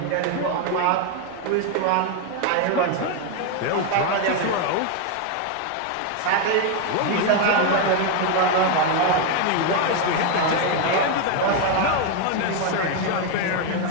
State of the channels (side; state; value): both; different; correlation 0.01